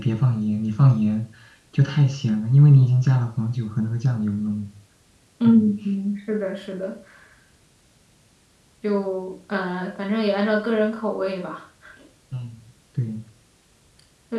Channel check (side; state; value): both; identical; correlation 1.00